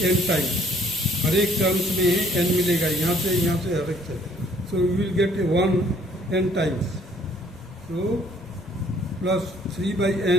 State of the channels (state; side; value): noise; left; rumble, 21 dB below the sound